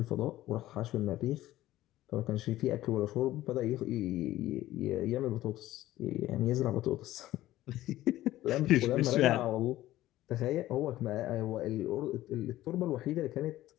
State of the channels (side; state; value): right; quieter; 15.2 dB